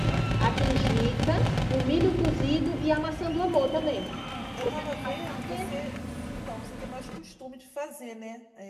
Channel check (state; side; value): identical; both; correlation 1.00